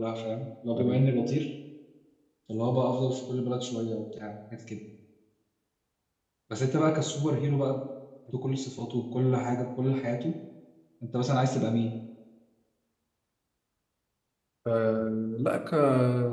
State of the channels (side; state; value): both; identical; correlation 1.00